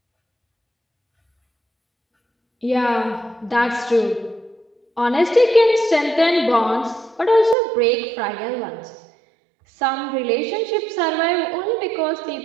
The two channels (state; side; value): drops out; left; at 7.6 s